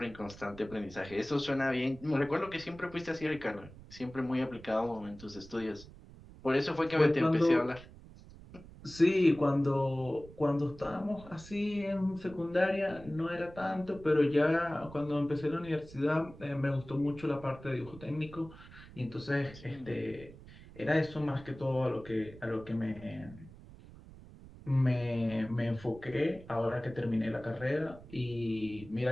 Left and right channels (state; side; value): noise; right; rumble, 18 dB below the sound